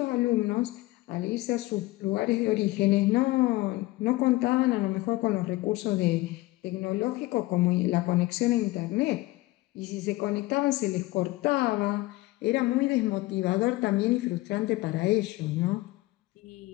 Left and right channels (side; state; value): right; quieter; 19.4 dB